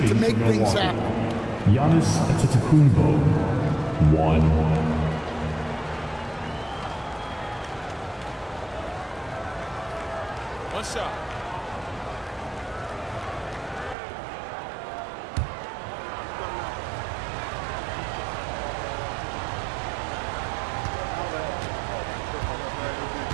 to make things happen. Giannis Antetokounmpo, 1. One shot.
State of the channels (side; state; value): left; drops out; at 14.0 s